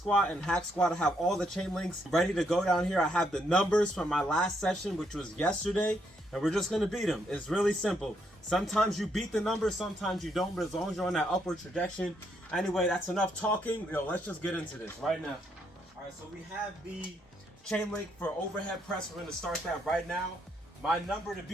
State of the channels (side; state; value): both; normal; correlation 0.75